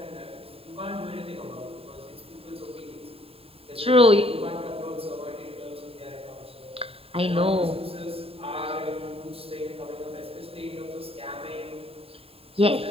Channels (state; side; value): late; left; 0.28 ms